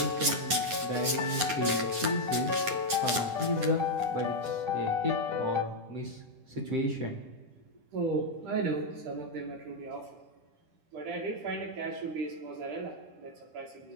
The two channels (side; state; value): left; late; 9.4 ms